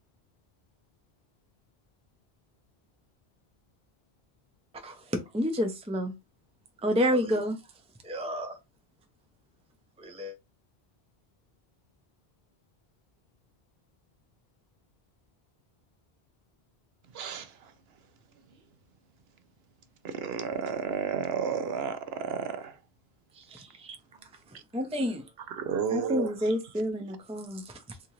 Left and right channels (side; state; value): both; normal; correlation 0.37